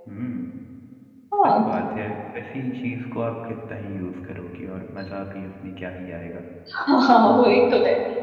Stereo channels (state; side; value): identical; both; correlation 1.00